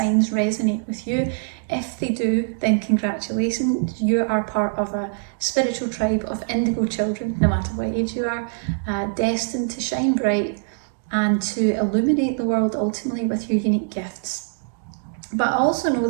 resonate with you? If they do, then congratulations. You are part of a spiritual tribe of indigo children, no matter what age you are, destined to shine bright and to illuminate the world ultimately with your unique gifts. But I also know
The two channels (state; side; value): silent; left; digital silence